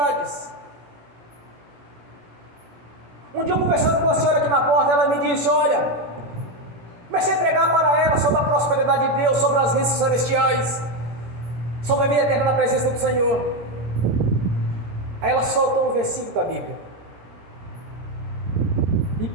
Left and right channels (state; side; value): late; left; 17 ms